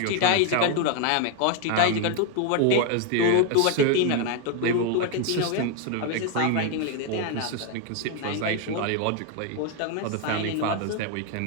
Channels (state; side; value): different; both; correlation 0.01